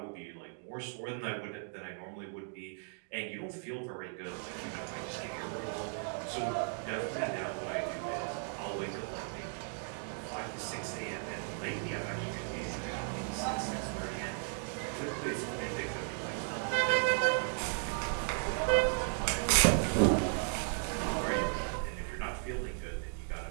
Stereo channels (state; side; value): silent; left; 54 dB below the other